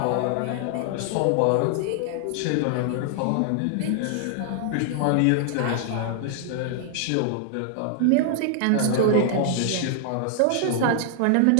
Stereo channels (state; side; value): different; both; correlation 0.00